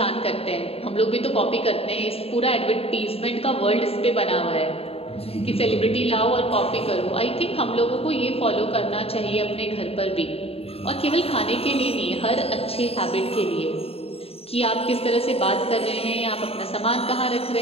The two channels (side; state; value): right; late; 0.28 ms